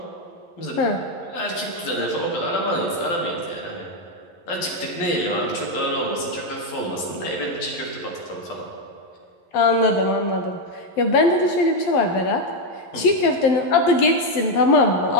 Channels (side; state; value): right; late; 11 ms